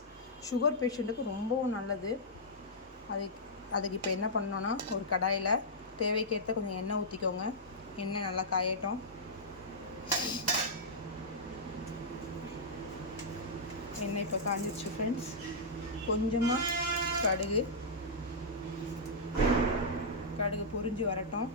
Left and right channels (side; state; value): both; normal; correlation -0.10